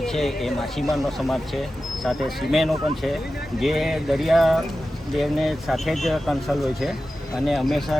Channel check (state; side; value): normal; both; correlation 0.93